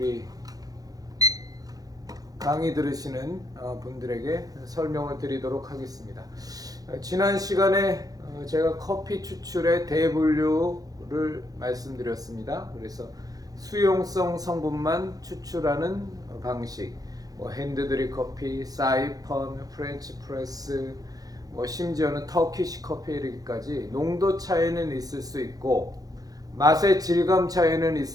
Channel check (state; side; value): late; left; 0.18 ms